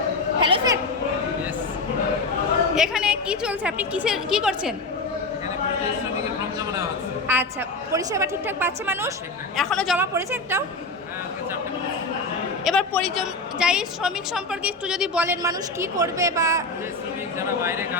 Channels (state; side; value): quieter; right; 3.2 dB